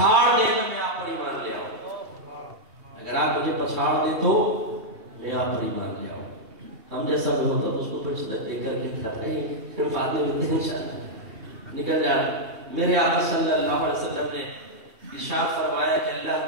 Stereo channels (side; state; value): left; late; 2.8 ms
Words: دیں تو میں آپ پر ایمان لے آؤں، اگر آپ مجھے پچھاڑ دیں تو میں آپ پر ایمان لے آؤں۔ ہم جیسا بھی ہوتا تو اس کو پھر دے کر کے پھر فاتح ہوتے ہیں انشاءاللہ نکل جائے۔ میرے آقا صلی اللہ علیہ وسلم نے ارشاد فرمایا کہ